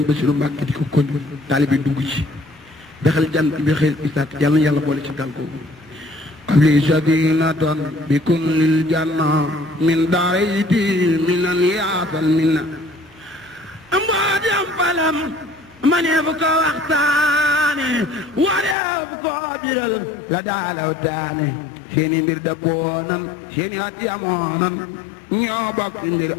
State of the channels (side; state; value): right; drops out; at 18.8 s